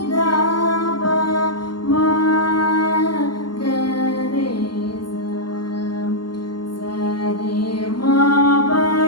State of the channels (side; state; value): right; late; 0.72 ms